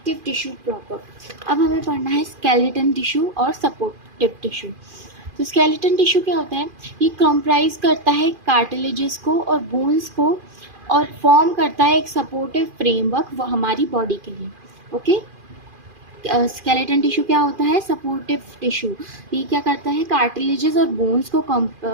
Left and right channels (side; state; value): left; late; 2.4 ms